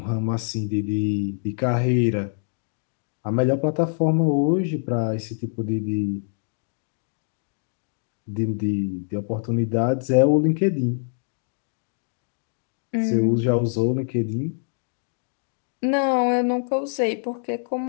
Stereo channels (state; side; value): silent; right; digital silence